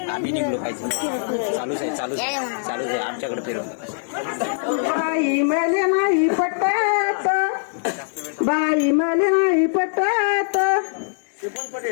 आम्ही निघलो पाहिजे. चालूच आहे आमच्याकडे फिरो. बाई मले नाही पटत, बाई मले नाही पटत.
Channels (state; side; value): silent; right; digital silence